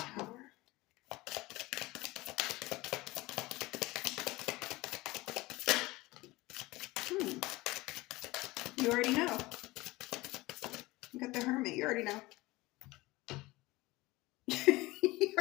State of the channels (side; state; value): right; quieter; 20.5 dB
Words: You already know. You got the Hermit. You already know. You